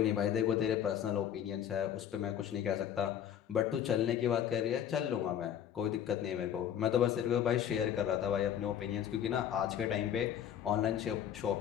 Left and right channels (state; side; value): quieter; right; 9.8 dB